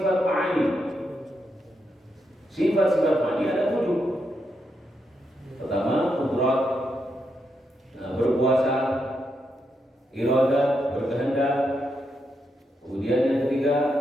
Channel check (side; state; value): both; normal; correlation 0.82